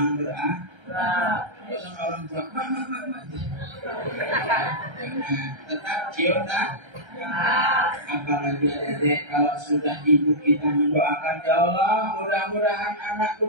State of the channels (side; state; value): left; late; 1.3 ms